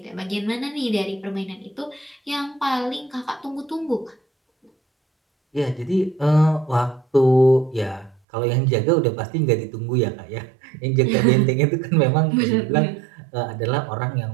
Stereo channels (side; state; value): left; drops out; at 8.2 s